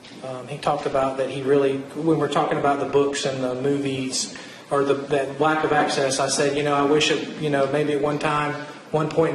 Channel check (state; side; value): identical; both; correlation 1.00